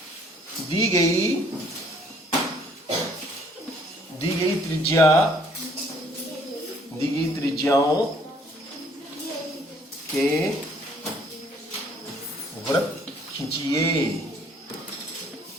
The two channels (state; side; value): normal; both; correlation 0.61